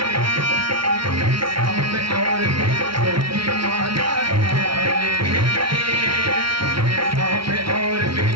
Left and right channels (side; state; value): left; late; 0.74 ms